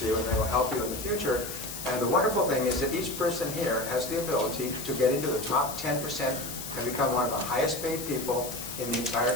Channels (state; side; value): noise; left; hiss, 8 dB below the sound